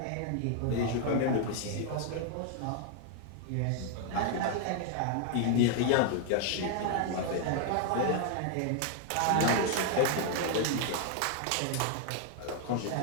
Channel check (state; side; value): different; both; correlation 0.00